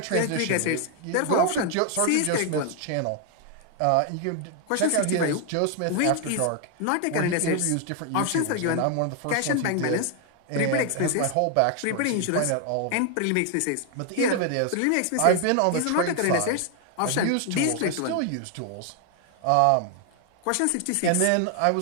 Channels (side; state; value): both; different; correlation 0.00